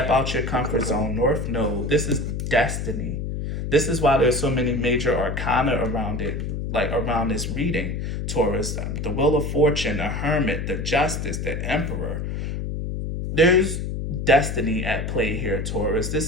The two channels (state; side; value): noise; left; hum, 3 dB below the sound